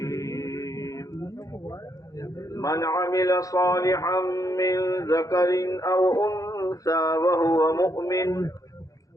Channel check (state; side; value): late; right; 0.17 ms